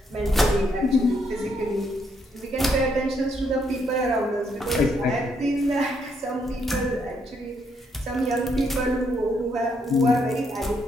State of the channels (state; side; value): normal; both; correlation 0.74